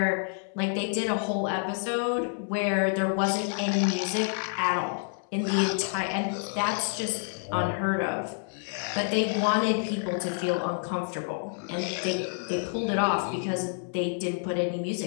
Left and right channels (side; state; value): right; silent; 59 dB below the other